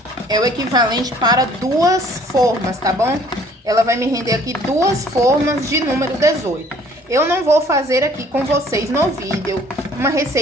é o equivalente para 2 formas, tá bom? Ela vai me render aqui 2 formas de número 18. Eu não vou fazer aqui com vocês no vídeo uma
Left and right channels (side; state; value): both; normal; correlation 0.56